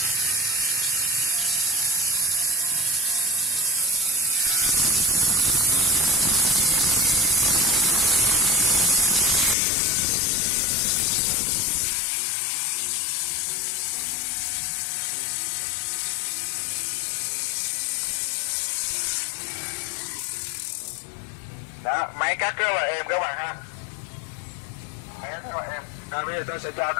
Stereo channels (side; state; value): right; drops out; at 9.6 s